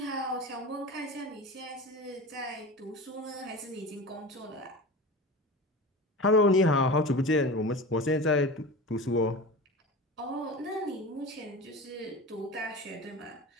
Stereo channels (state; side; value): normal; both; correlation 0.31